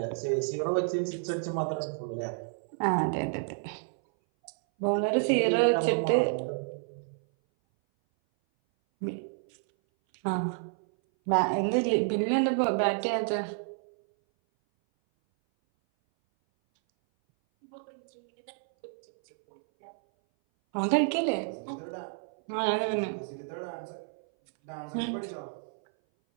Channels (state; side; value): silent; left; 57 dB below the other